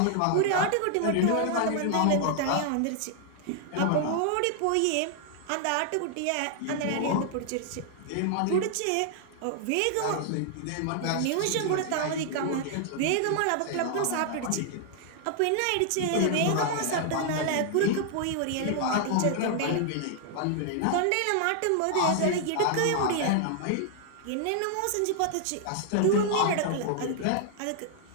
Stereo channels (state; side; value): different; both; correlation 0.00